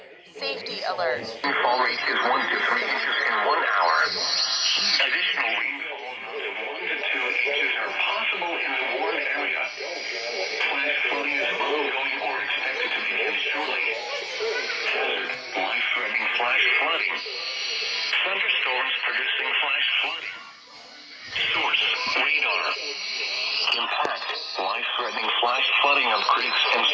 Safety alert. Rainfall rate is 1 to 3 inches in 1 hour. Additional rainfall of 1 to 2 inches are possible in the warm area. Flash flooding is ongoing or expected to begin shortly. Hazard, life-threatening flash flooding. Thunderstorms producing flash flooding. Source, radar. Impact, life-threatening flash flooding of creeks and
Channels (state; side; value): identical; both; correlation 1.00